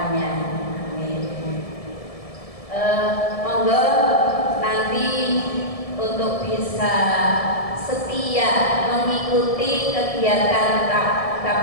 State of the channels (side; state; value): right; late; 1.7 ms